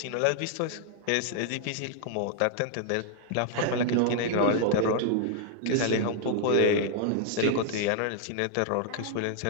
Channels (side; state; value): both; different; correlation -0.01